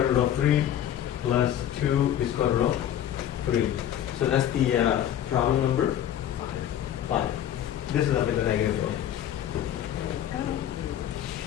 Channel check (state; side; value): quieter; right; 10.9 dB